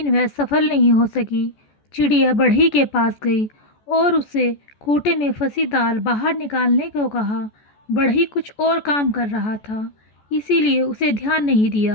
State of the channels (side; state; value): right; late; 14 ms